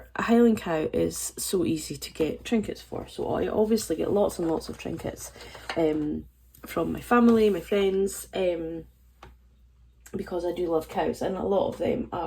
a Highland cow is so easy to get trinkets for, so I obviously get lots and lots of trinkets from my family, my friends, because I do love cows, and a lot of them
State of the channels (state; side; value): identical; both; correlation 1.00